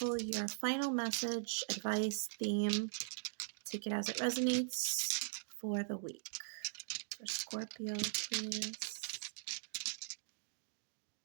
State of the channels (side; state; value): left; silent; digital silence